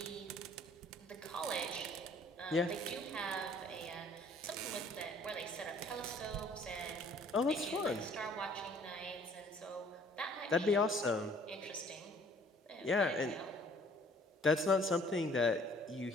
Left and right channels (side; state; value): both; normal; correlation 0.57